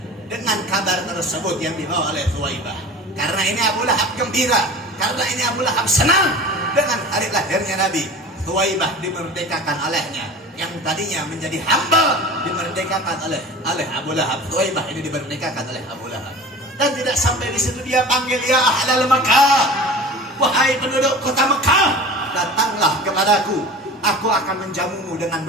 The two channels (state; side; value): normal; both; correlation 0.37